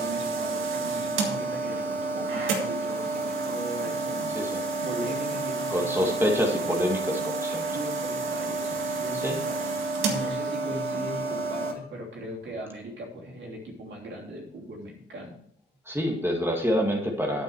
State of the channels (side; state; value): both; normal; correlation 0.60